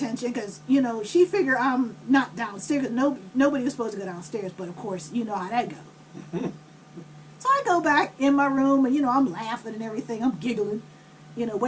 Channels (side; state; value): both; identical; correlation 1.00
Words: because, she figured I'm not downstairs. Nobody was supposed to go downstairs, but of course, you know how that goes. So I go back in my room, and, I'm laughing and everything. I'm giggling,